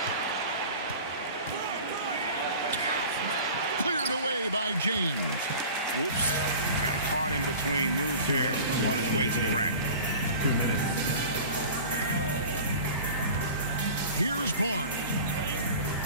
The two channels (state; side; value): inverted; both; correlation -0.39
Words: Cleared away by James. Whoops. Got caught in between moves here on his way to the rack. 2 minutes. Here's Barnes.